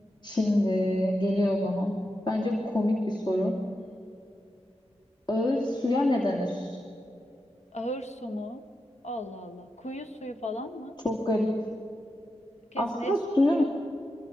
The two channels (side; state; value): both; normal; correlation 0.88